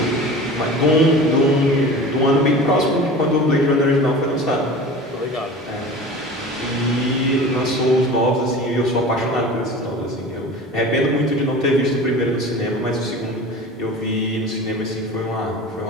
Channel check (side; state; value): both; normal; correlation 0.37